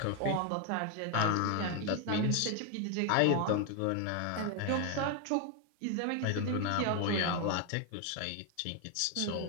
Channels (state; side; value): different; both; correlation 0.01